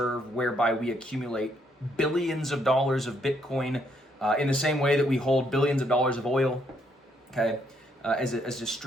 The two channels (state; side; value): normal; both; correlation 0.72